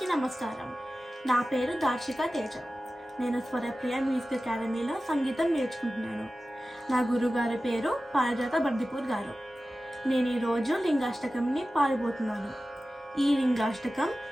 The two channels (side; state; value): both; normal; correlation 0.95